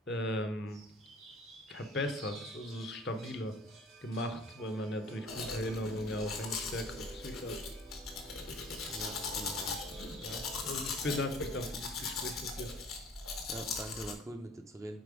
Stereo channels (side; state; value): both; normal; correlation 0.50